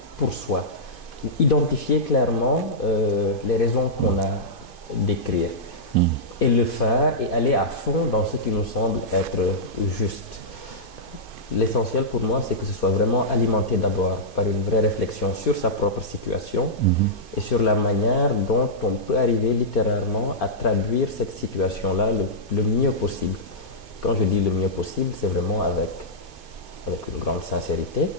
pour soi. Identifier clairement les raisons qu'on a d'écrire et le faire et aller à fond dans ce qui nous semble être juste. L'essentiel pour moi, c'est que ce soit vraiment alimenté d'abord par une vraie réflexion sur sa propre situation et sur la manière dont on peut arriver littérairement à traduire cette situation-là le mieux possible. Quand je dis le mieux possible, c'est vraiment avec une grande sincérité,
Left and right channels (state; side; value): late; right; 2.5 ms